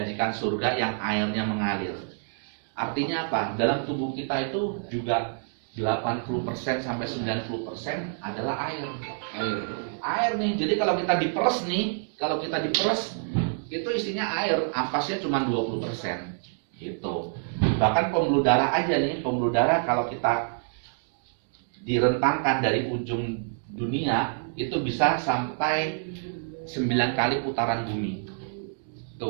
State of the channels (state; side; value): silent; left; digital silence